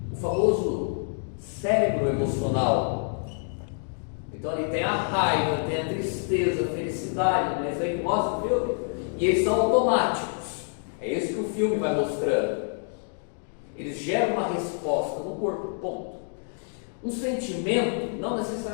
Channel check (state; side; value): silent; right; 60 dB below the other